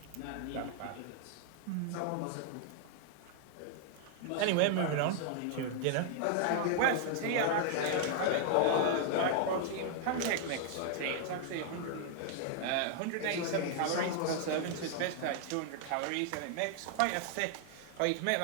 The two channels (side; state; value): both; different; correlation 0.00